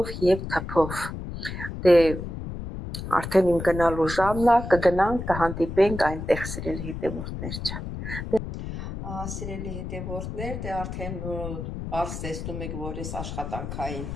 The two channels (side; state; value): left; noise; rumble, 7 dB below the sound